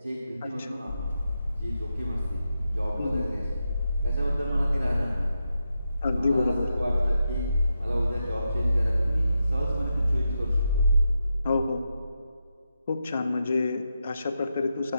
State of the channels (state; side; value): inverted; both; correlation -0.87